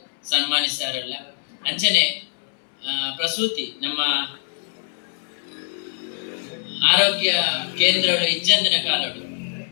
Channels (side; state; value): right; silent; 63 dB below the other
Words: ಸನ್ಮಾನಿಸಾರಲ್ಲ. ಅಂಚನೆ ಪ್ರಸೂತಿ ನಮ್ಮ ಆರೋಗ್ಯ ಕೇಂದ್ರಗಳು ಇಜ್ಜಂದಿನ ಕಾಲಡು